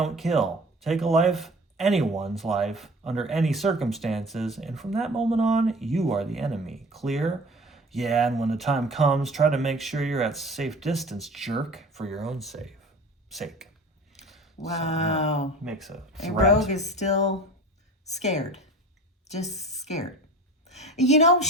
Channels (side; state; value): both; normal; correlation 0.41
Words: kill. Take a life, anyone's life, under any circumstances, and from that moment on, you are the enemy. Clear? Yeah, and when the time comes, try to make sure you're at safe distance, jerk, for your own sake. Wow. So, makes a threat. And Rogue is still scared. Just scared. You know,